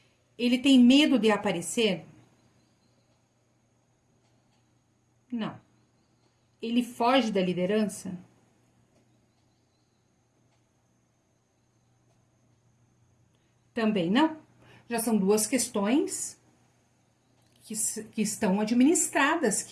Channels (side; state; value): both; identical; correlation 1.00